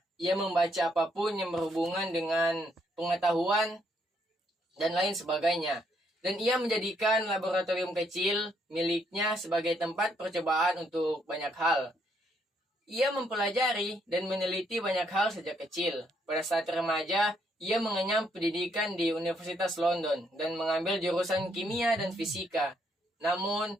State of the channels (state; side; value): normal; both; correlation 0.72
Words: Ia membaca apapun yang berhubungan dengan pengetahuan dan lain sebagainya. Dan ia menjadikan laboratorium kecil miliknya sebagai tempat percobaan untuk banyak hal. Ia mempelajari dan meneliti banyak hal sejak kecil. Pada saat remaja, ia mengenyam pendidikan di Universitas London dan mengambil jurusan kimia dan fisika. Namun,